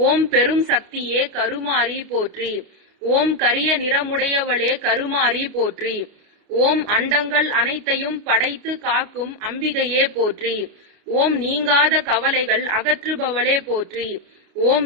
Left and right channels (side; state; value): left; late; 29 ms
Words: பெரும் சக்தியே கருமாரி போற்றி. ஓம் கரிய நிறமுடையவளே கருமாரி போற்றி. ஓம் அண்டங்கள் அனைத்தையும் படைத்து காக்கும் அம்பிகையே போற்றி. ஓம் நீங்காத கவலைகள் அகற்றுபவளே போற்றி. ஓம்